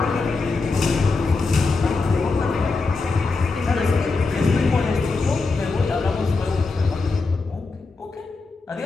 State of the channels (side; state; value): right; quieter; 4.0 dB